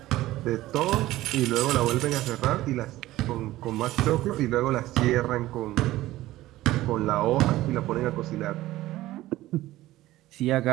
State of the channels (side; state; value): left; quieter; 16.2 dB